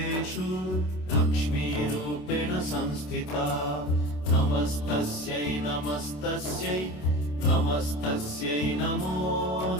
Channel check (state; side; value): late; right; 27 ms